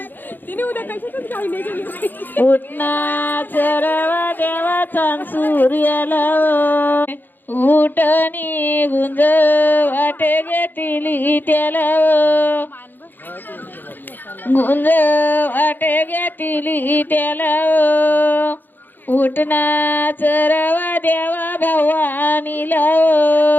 उठना चरवा देवाचा सूर्याला उठणी गुंज वाटे घेतली त्याला गुंज वाटे घेतली त्याला उठना चरवा देवा भवानीला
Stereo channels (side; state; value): right; late; 0.090 ms